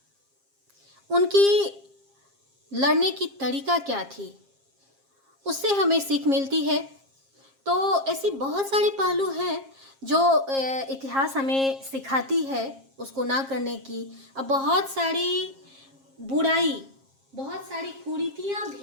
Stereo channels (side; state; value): left; late; 7.4 ms